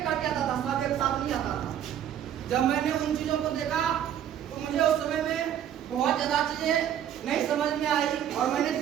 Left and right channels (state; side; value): quieter; left; 10.2 dB